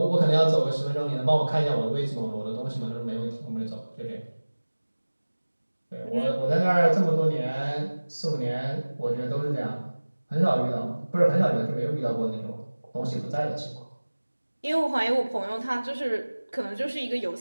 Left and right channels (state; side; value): inverted; both; correlation -1.00